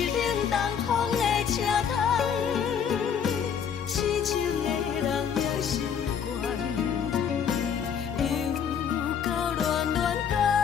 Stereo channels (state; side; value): quieter; right; 7.6 dB